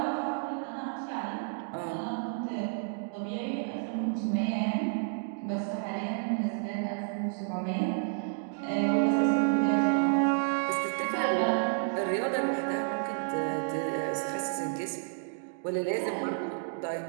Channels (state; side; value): silent; left; digital silence